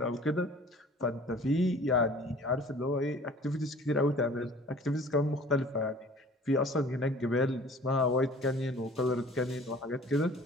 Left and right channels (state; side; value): normal; both; correlation 0.48